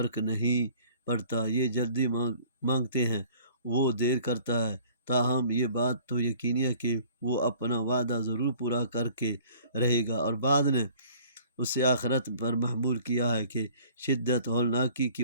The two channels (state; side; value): inverted; both; correlation -0.52